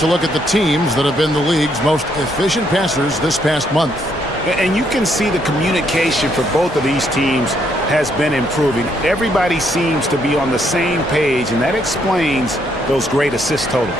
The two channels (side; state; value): both; normal; correlation 0.72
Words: look at the teams that have been the league's most efficient passers this past month. And you can see the communication for both of these teams has been improving. Everybody seems to be on the same page, and that explains those great assist totals.